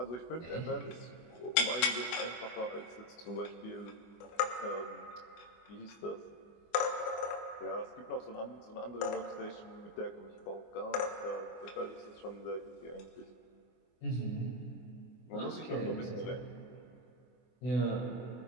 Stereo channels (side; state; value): right; late; 24 ms